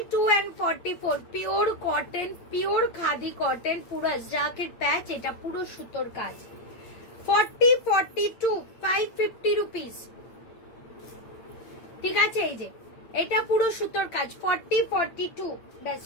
and 44 pure cotton, pure khadi cotton, পুরো জ্যাকেট প্যাচ, এটা পুরো সুতোর কাজ। 40, 42, 550 রুপিস, ঠিক আছে, এই যে এটা পুরো সুতোর কাজ। 40, 42, ব্যাস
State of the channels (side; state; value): right; late; 8.8 ms